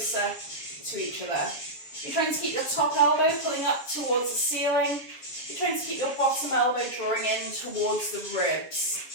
to each other. You're trying to keep your top elbow pulling up towards the ceiling. You're trying to keep your bottom elbow drawing in towards the ribs.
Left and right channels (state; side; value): late; right; 6.9 ms